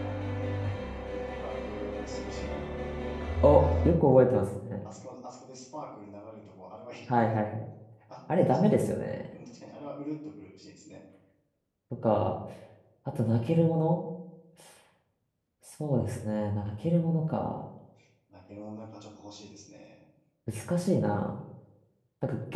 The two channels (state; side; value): identical; both; correlation 1.00